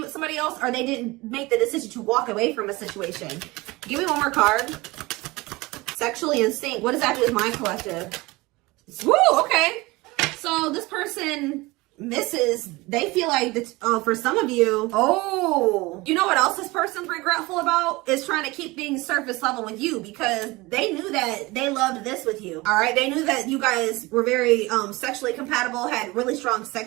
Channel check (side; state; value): left; quieter; 22.1 dB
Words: with somebody else or they didn't make the decision to walk away from a situation. Give me one more card. Sexually in sync. What does that do with my collective? Woo, okay. So this person misses, they feel like that, for some of you, you know what else this person's regretful about? Is trying to keep things surface level with you because they knew that they loved this with you. All right. They knew that you guys were very sexually compatible, had really strong